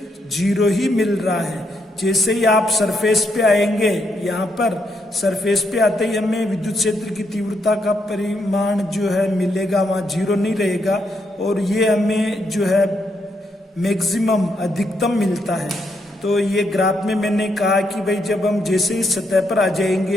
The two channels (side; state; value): both; normal; correlation 0.78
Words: 0 ही मिल रहा है। जैसे ही आप सरफेस पे आएंगे, यहाँ पर सरफेस पे आते ही हमें विद्युत क्षेत्र की तीव्रता का परिमाण जो है मिलेगा, वहाँ 0 नहीं रहेगा और ये हमें जो है मैक्सिमम अधिकतम मिलता है। तो ये ग्राफ में मैंने कहा कि भाई जब हम जैसे ही सतह पर आ